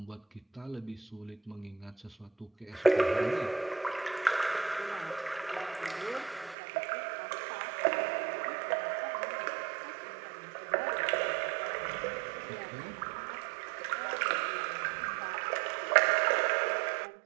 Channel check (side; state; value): left; drops out; at 6.6 s